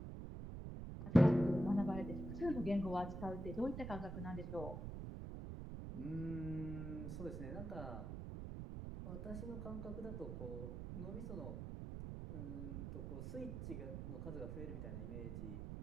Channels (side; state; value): right; noise; rumble, 6 dB below the sound